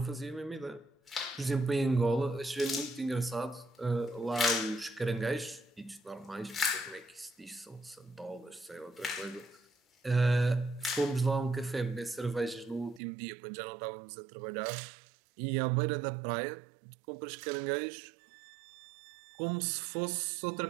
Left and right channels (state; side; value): drops out; left; at 13.0 s